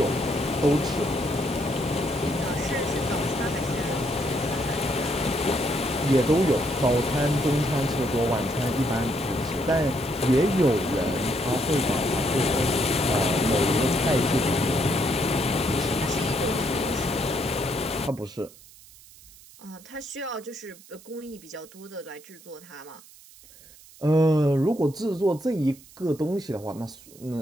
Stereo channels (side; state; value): right; noise; hiss, 22 dB below the sound